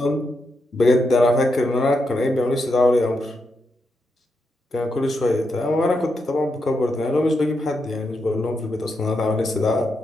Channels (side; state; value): both; normal; correlation 0.84